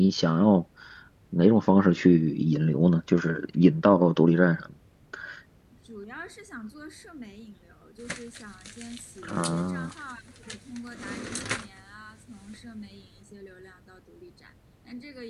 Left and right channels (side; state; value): both; identical; correlation 1.00